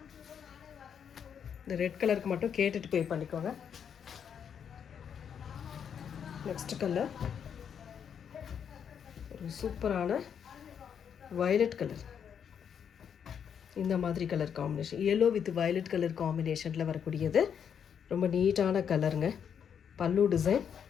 இந்த ரெட் கலருக்கு மட்டும் கேட்டுட்டு பே பண்ணிக்கோங்க. நெக்ஸ்ட் கலர் ஒரு சூப்பரான வயலட் கலர். இந்த மாதிரி colour combination. Yellow with violet colour காம்பினேஷனில் வரக்கூடியது. ரொம்ப நீட்டான கலருங்க. பல்லு டிசைன்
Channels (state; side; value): quieter; right; 7.8 dB